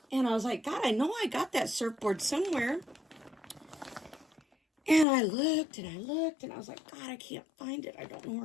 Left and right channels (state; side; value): drops out; right; at 5.1 s